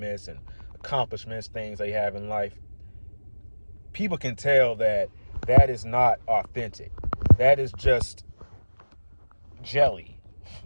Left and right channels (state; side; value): inverted; both; correlation -1.00